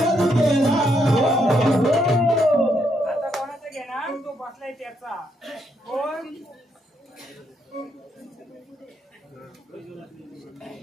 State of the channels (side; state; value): both; normal; correlation 0.76